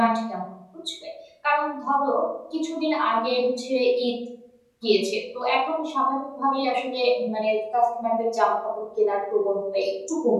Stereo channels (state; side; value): identical; both; correlation 1.00